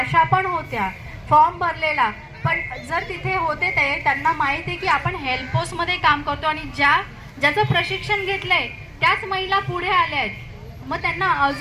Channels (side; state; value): both; identical; correlation 1.00